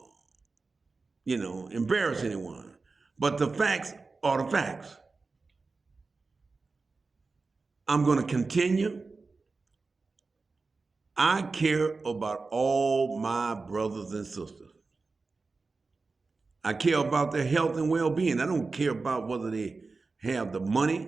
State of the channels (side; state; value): left; quieter; 4.0 dB